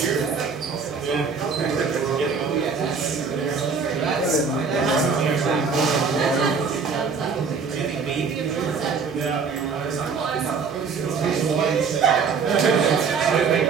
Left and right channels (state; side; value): quieter; left; 5.3 dB